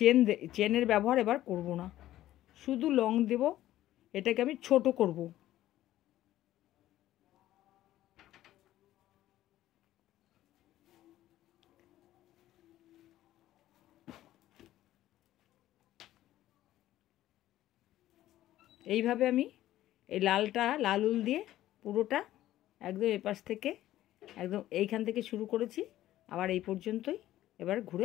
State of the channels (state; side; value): quieter; right; 14.0 dB